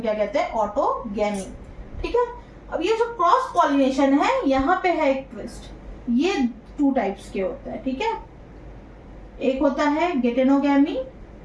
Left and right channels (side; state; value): both; identical; correlation 1.00